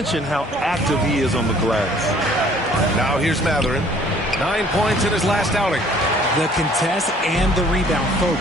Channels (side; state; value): both; normal; correlation 0.56